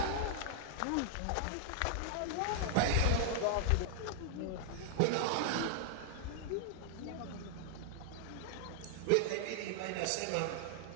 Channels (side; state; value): both; different; correlation -0.01